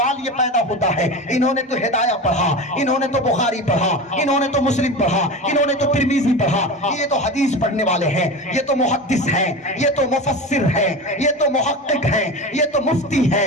یہ پیدا ہوتا ہے, انہوں نے تو ہدایہ پڑھا, انہوں نے تو بخاری پڑھا, انہوں نے تو مسلم پڑھا, انہوں نے تو ترمذی پڑھا, یہ تو حدیث پڑھنے والے ہیں, یہ تو محدث ہیں, یہ تو مفسر ہیں, یہ تو محقق ہیں, یہ تو مفتی ہیں,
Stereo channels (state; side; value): normal; both; correlation 0.27